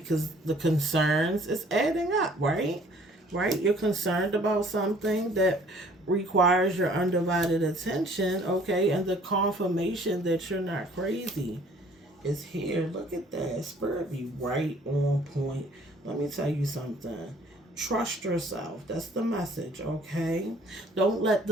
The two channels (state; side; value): normal; both; correlation 0.56